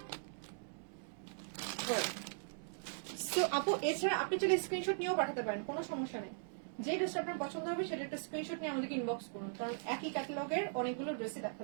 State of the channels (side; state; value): left; silent; digital silence